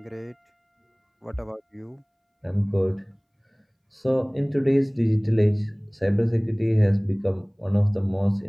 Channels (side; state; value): both; identical; correlation 1.00